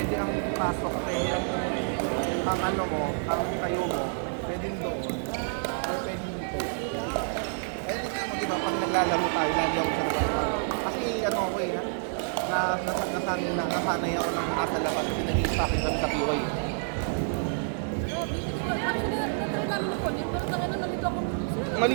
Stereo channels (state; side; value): silent; left; digital silence